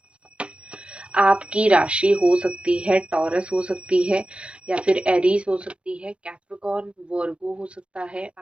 आपकी राशि हो सकती है टॉरस, हो सकती है या फिर एरीज हो सकती है, कैप्रिकॉर्न, वर्गो हो सकता है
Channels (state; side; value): late; left; 0.059 ms